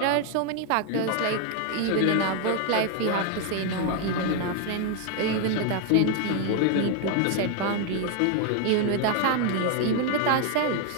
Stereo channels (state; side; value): different; both; correlation 0.00